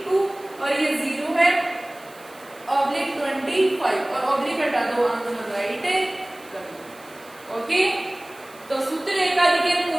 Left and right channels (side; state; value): right; noise; hiss, 24 dB below the sound